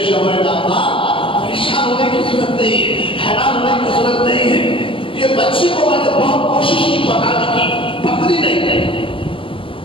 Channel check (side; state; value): right; late; 0.25 ms